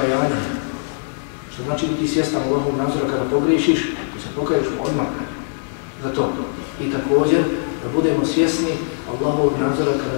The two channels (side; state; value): right; silent; digital silence